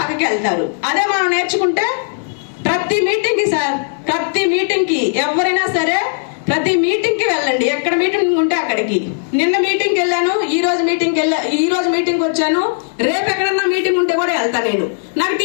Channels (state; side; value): silent; right; digital silence